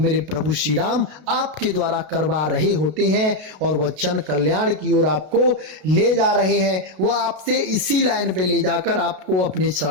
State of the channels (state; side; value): late; left; 33 ms